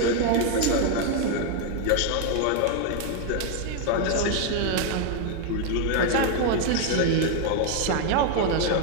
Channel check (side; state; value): both; different; correlation 0.00